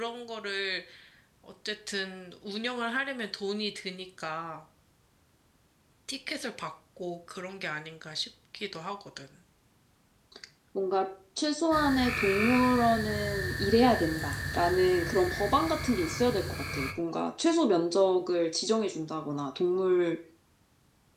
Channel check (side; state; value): both; identical; correlation 1.00